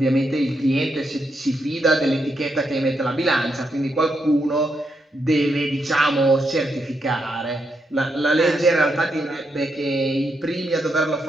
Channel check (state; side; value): normal; both; correlation 0.81